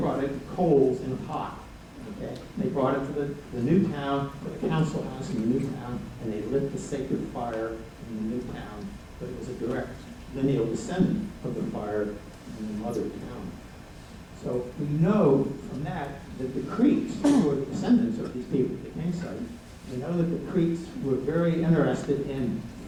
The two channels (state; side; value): identical; both; correlation 1.00